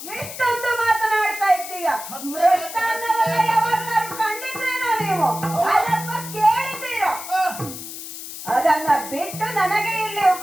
ಎಷ್ಟೊಂದು ಮಾತನಾಡ್ತಾ ಇದ್ದೀಯ. ಮೃಷ್ಟಾನ್ನವನ್ನ ಯಾವಾಗಲಾದ್ರೂ ಕಂಡಿದ್ರೇನೋ ನೀವು? ಅಥವಾ ಕೇಳಿದ್ದೀರೋ? ಅದನ್ನ ಬಿಟ್ಟು ನನಗೆ ಇಲ್ಲಿ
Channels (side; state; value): left; noise; hiss, 10 dB below the sound